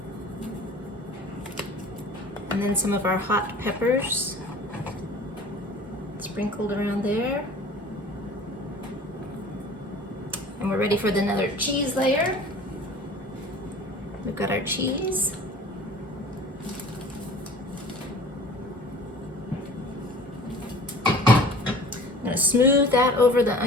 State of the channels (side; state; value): both; normal; correlation 0.45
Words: And then some of our hot peppers sprinkled around there. And we're ready for another cheese layer. We've got our cheese. I'm going to smooth that over the